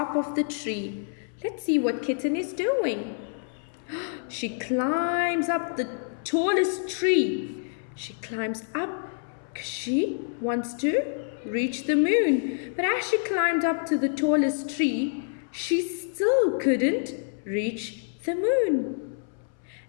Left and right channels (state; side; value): silent; right; 60 dB below the other